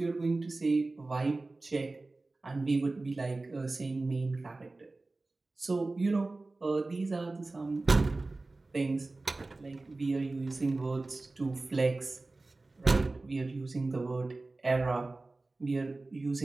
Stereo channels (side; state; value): left; quieter; 3.2 dB